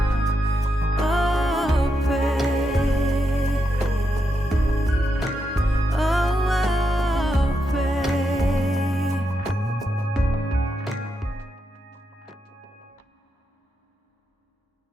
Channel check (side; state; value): both; normal; correlation 0.84